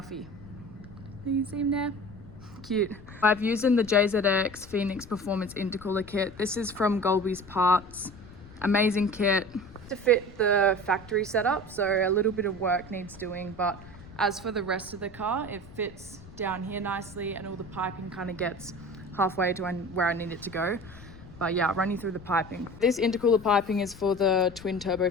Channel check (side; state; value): left; noise; rumble, 18 dB below the sound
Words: Do you see him there? Cute. I've used in the JZX Phoenix Performance Intercooler kit. This is from Golby's Parts. Amazing kit. To fit the factory setup, so a little bit of work needs doing, but As for the rest of the car, it fits down here nicely and all the piping kind of gets halfway to where I need it to go. But yeah, I'll run you through the piping. This intercooler piping is for the twin turbo